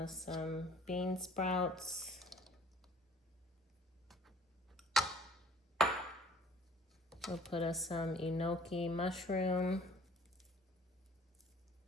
some bean sprouts. We'll put some Enoki mushroom.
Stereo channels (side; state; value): both; normal; correlation 0.54